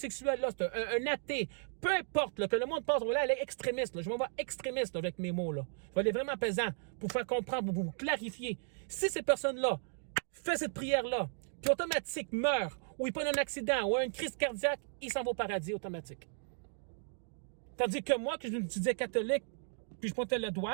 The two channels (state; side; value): silent; left; 54 dB below the other